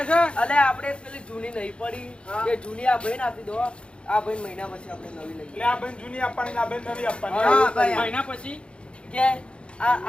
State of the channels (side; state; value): right; late; 0.057 ms